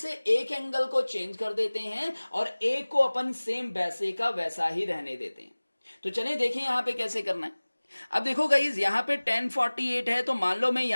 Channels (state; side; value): inverted; both; correlation -1.00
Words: एक एंगल को चेंज कर देते हैं और एक को अपन सेम वैसे का वैसा ही रहने देते हैं। तो चलें देखें यहां पे कैसे करना है। अब देखो गाइज यहां पे 1048 है, तो मान लो मैं